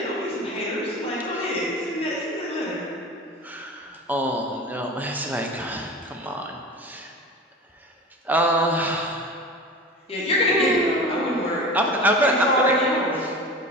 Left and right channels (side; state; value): both; normal; correlation 0.33